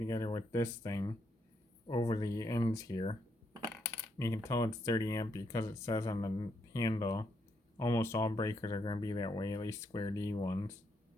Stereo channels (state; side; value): normal; both; correlation 0.77